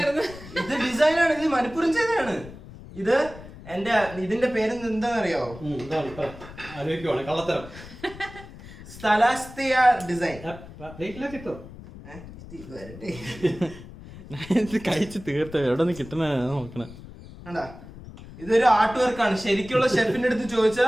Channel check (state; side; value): noise; left; rumble, 16 dB below the sound